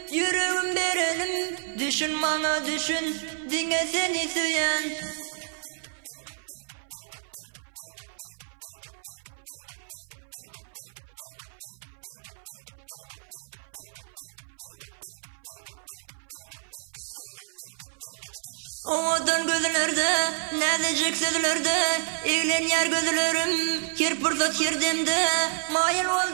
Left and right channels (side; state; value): left; silent; 59 dB below the other